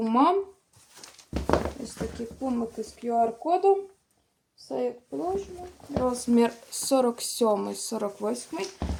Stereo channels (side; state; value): both; identical; correlation 1.00